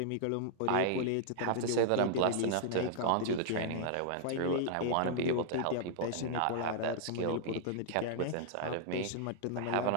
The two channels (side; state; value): both; different; correlation -0.01